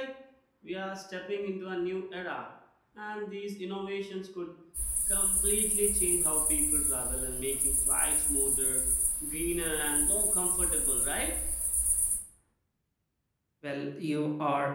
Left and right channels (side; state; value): both; identical; correlation 1.00